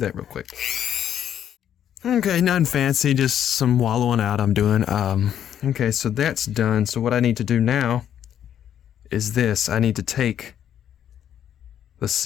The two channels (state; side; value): quieter; right; 9.9 dB